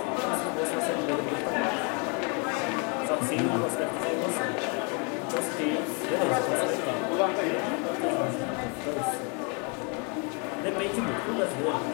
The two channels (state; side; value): quieter; right; 34.9 dB